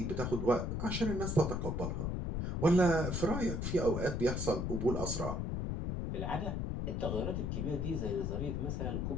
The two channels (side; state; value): left; noise; rumble, 1 dB below the sound